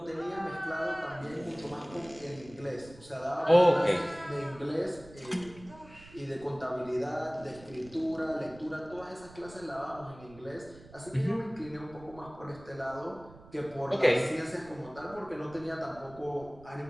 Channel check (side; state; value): right; noise; rumble, 20 dB below the sound